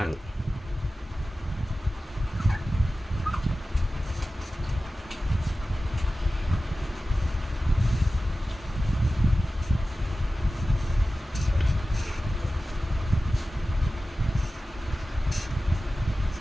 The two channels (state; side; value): normal; both; correlation 0.95